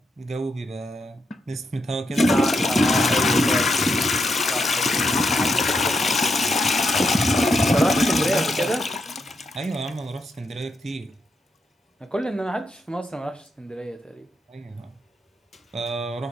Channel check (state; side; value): normal; both; correlation 0.81